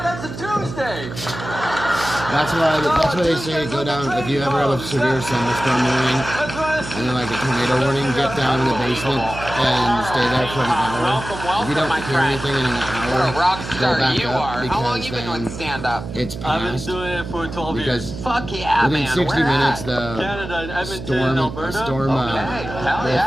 That's a Tuesday. birthday. That's why they say go down if you ever have a severe thunderstorm warning and then like a tornado warning, get down in the basement and stay there for an hour. If you don't hear anything in an hour, go back up because then it's past. I've been doing it for 12 years. Fuck yeah, within man. 60 minutes, the Canada, Edmonton, storm Alberta. will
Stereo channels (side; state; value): right; noise; hum, 10 dB below the sound